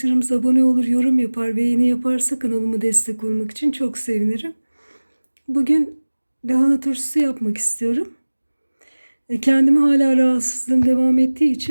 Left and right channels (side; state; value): both; inverted; correlation -1.00